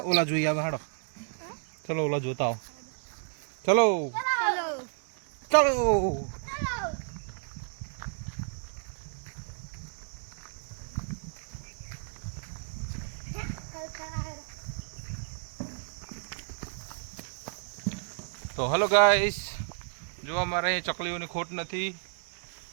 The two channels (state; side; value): silent; left; digital silence